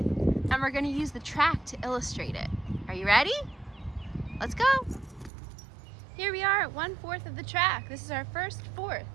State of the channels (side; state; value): left; drops out; at 5.3 s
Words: and we're going to use the track to illustrate it. Are you ready? Let's go. Here we are at 1/4 of the track. This is our first 4th.